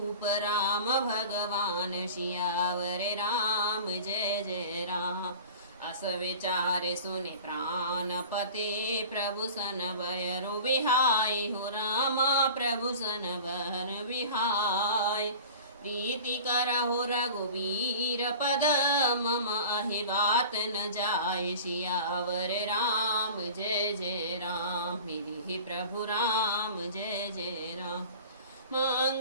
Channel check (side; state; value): both; inverted; correlation -0.39